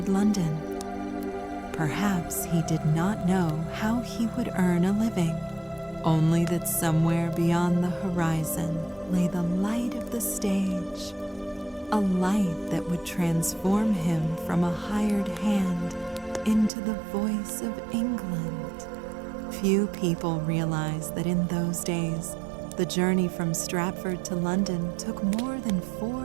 London. Perhaps he did not know how he would earn a living, only that somewhere beyond the horizon lay the light of the stage, a light that would transform him from a hired hand into the voice of England. Few people realize that in those days, the journey from Stratford to London took more than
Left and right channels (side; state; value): left; drops out; at 16.7 s